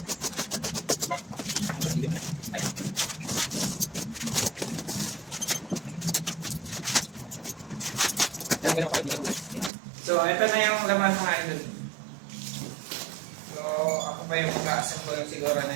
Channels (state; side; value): drops out; left; at 9.7 s